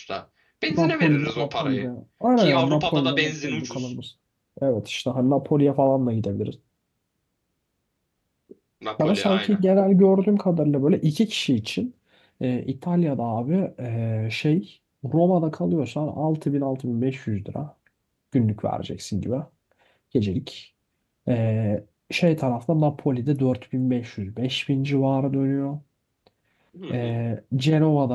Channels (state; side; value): identical; both; correlation 1.00